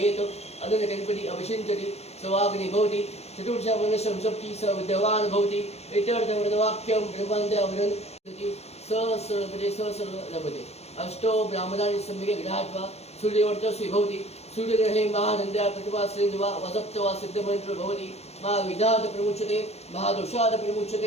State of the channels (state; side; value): late; right; 0.31 ms